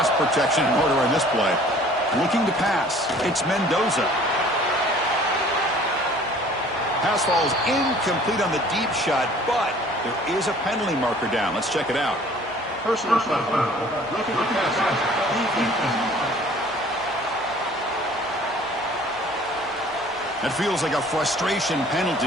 protection in order on this play. Looking to pass. It's Mendoza. Pass falls incomplete on the deep shot, but there is a penalty marker down. Let's check it out. Personal foul. Roughing the passer. That feels like a frustration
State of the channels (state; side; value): normal; both; correlation 0.52